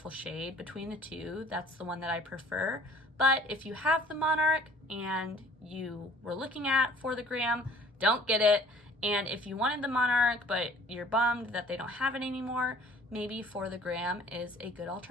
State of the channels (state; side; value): normal; both; correlation 0.51